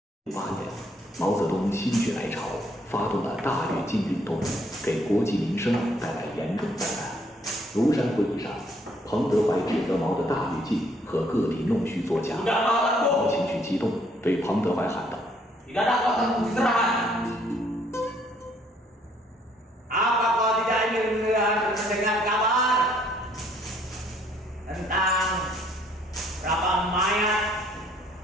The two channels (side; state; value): both; normal; correlation 0.65